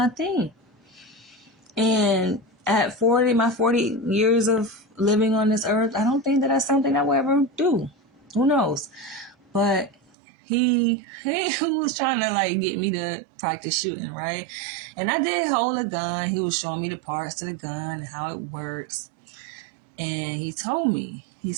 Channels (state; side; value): drops out; left; at 10.0 s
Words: thing. And at 40, my 40 years of living on this earth, I don't think that that's something I will ever do. Who knows? But he was trying to like get me to practice shooting, right? And I did hold a gun. He was showing me the parts to the gun and how it works. And he told me, he